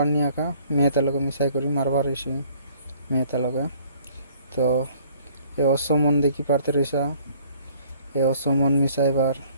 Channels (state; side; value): inverted; both; correlation -0.57